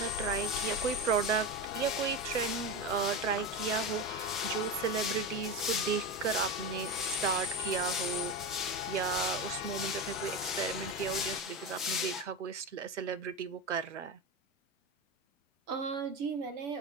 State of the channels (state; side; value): normal; both; correlation 0.20